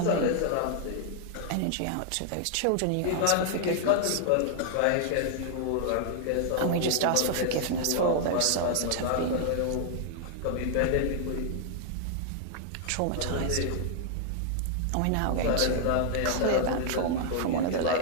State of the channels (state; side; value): different; both; correlation -0.01